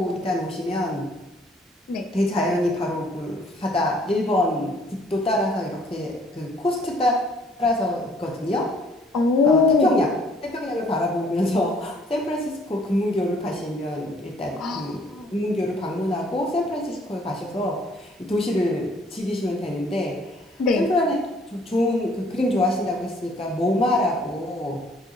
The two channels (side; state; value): both; normal; correlation 0.60